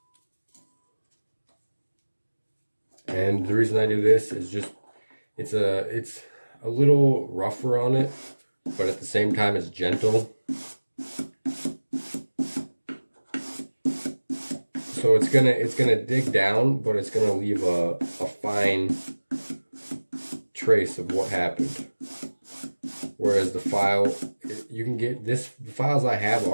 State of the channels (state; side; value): inverted; both; correlation -1.00